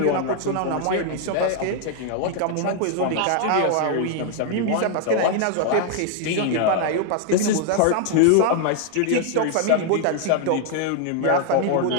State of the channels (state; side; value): different; both; correlation 0.00